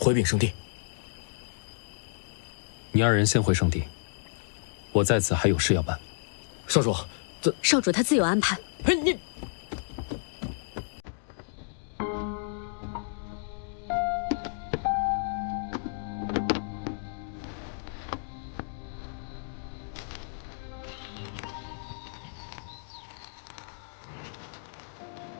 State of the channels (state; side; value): silent; right; digital silence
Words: 禀圣地？你二人先回圣地，我在此还有事要办。少主，少主他自有安排。哎，你。